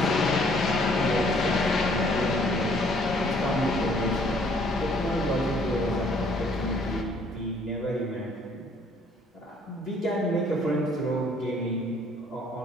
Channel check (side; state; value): both; normal; correlation 0.61